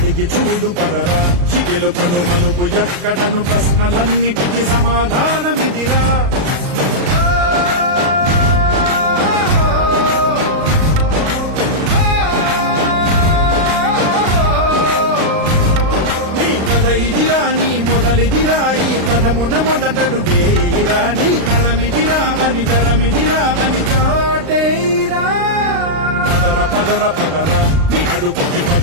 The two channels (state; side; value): late; left; 36 ms